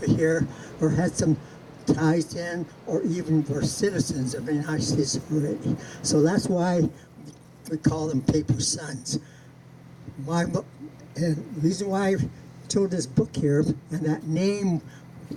here, or had some ties in, or even were citizens of the United States already. So that's why we call them paper sons. And the reason why I chose this book here, and that name,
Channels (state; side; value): identical; both; correlation 1.00